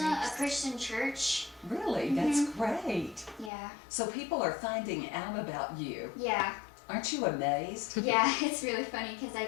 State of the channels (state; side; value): drops out; right; at 3.5 s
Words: Christian church. Really? That's great. Yeah. So people are finding out about you. Yeah. Aren't you amazed? Yeah, it's really funny because